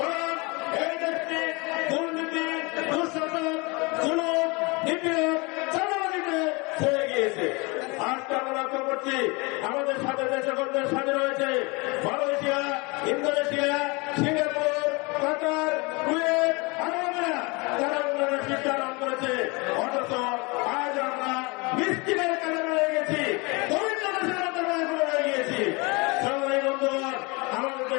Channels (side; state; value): right; quieter; 27.7 dB